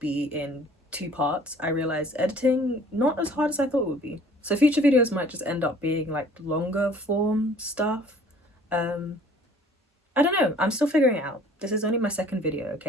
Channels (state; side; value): normal; both; correlation 0.53